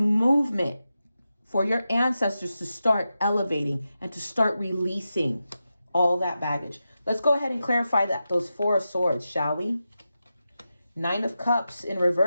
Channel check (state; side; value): inverted; both; correlation -0.91